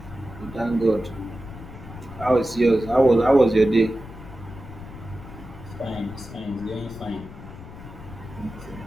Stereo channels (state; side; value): noise; left; rumble, 14 dB below the sound